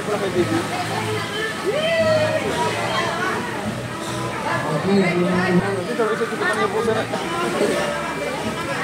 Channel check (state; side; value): identical; both; correlation 1.00